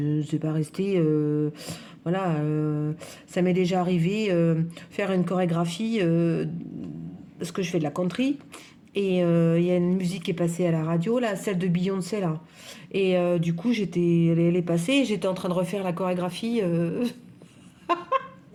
ne sais pas rester. Voilà, ça m'est déjà arrivé faire une chorégraphie parce que je fais de la country et il y a une musique qui est passée à la radio là, celle de Beyoncé là. Et du coup, elle est passée, et j'étais en train de refaire la chorégraphie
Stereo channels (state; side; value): identical; both; correlation 1.00